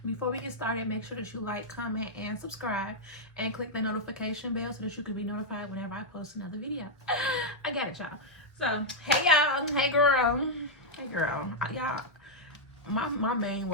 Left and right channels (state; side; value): normal; both; correlation -0.05